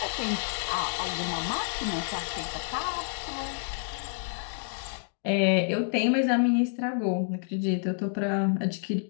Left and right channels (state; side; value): silent; right; digital silence